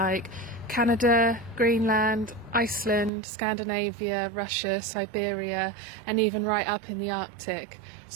Canada, Greenland, Iceland, Scandinavia, Russia, Siberia and even right up in the Arctic.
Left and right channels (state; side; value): drops out; left; at 3.1 s